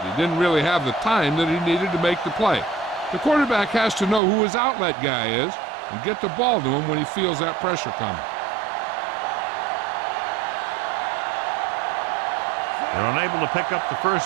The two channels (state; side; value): drops out; left; at 4.2 s